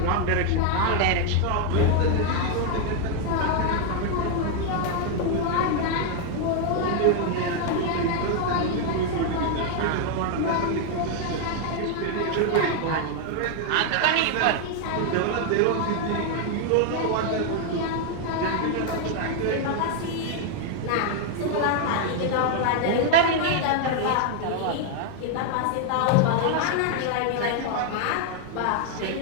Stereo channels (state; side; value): different; both; correlation 0.00